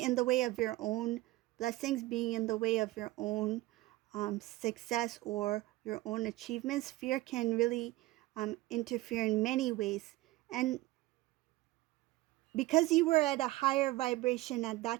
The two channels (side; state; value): left; quieter; 18.3 dB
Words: the way of your own blessings, being in the way of your own success or your own achievements. Fear can really interfere in many ways. And because you were at a higher vibration at